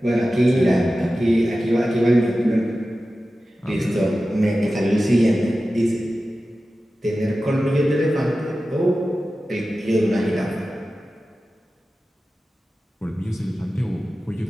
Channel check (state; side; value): normal; both; correlation 0.94